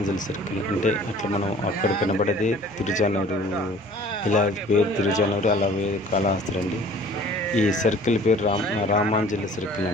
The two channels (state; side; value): noise; right; rumble, 28 dB below the sound